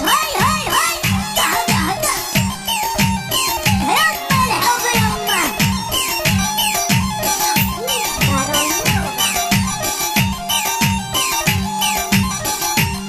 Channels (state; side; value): identical; both; correlation 1.00